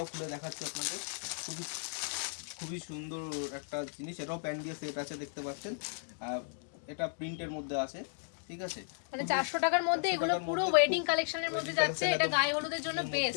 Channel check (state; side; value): silent; right; digital silence